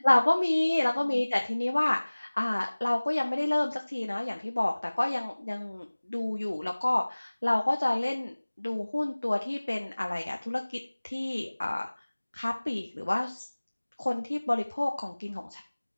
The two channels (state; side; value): inverted; both; correlation -1.00